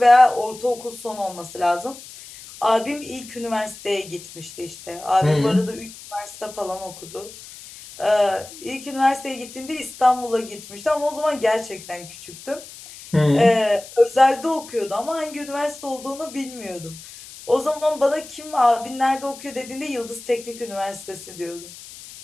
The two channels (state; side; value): noise; left; hiss, 16 dB below the sound